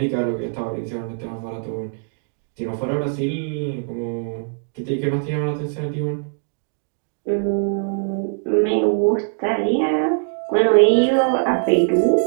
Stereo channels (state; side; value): silent; left; digital silence